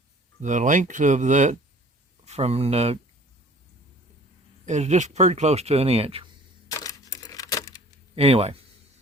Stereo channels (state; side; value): normal; both; correlation 0.50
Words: the length of that from the is just pretty close to 1 inch. Anyway,